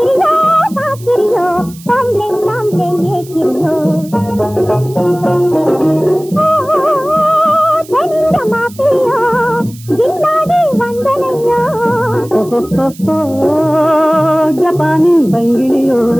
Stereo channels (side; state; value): right; noise; hiss, 21 dB below the sound